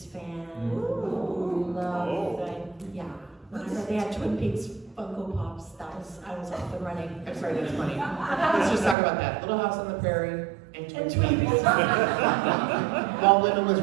fan. Love that, yeah. Whenever they had Twin Peaks Funko Pops, I was off and running. I'm sorry, that's funny. Let's just talk about that. Little House on the Prairie and Twin Peaks. While Women was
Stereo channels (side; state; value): left; drops out; at 9.0 s